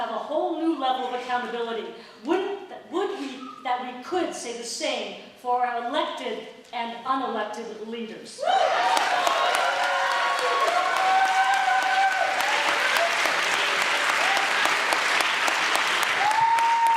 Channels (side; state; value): both; identical; correlation 1.00